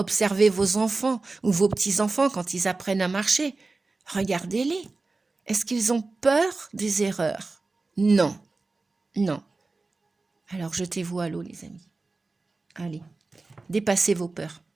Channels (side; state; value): left; quieter; 3.6 dB